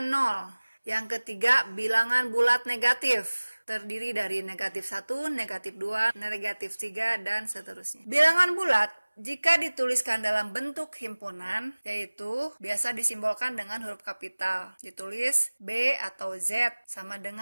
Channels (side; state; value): both; inverted; correlation -1.00